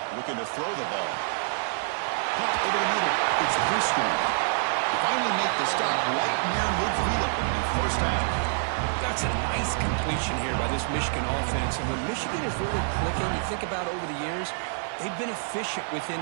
Looking to throw the ball. Caught over the middle. It's Driscoll. He finally make the stop right near midfield on the first down. That's a nice completion here by this Michigan offense. And when Michigan is really clicking, you think about over the years, they've been efficient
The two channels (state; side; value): silent; left; 60 dB below the other